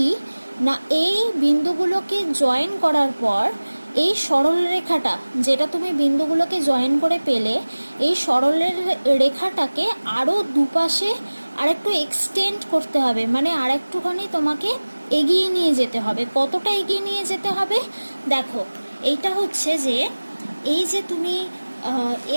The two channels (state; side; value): inverted; both; correlation -1.00